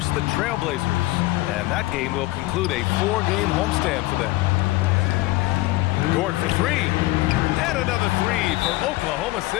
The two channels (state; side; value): quieter; right; 19.6 dB